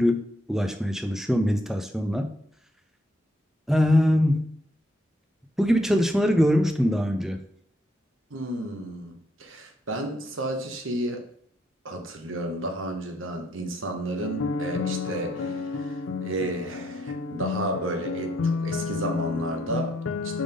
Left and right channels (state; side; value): normal; both; correlation 0.74